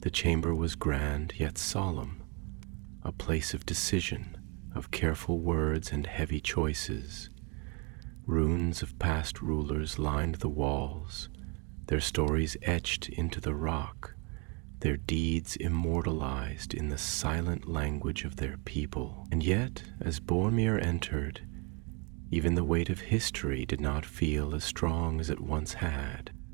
The chamber was grand yet solemn, a place of decision, of careful words and heavy choices. Runes of past rulers lined the walls, their stories etched into the rock, their deeds immortalized in the silent language of their people. And yet, as Boromir entered, even the weight of history did not feel as strong as it once had.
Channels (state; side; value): quieter; left; 32.0 dB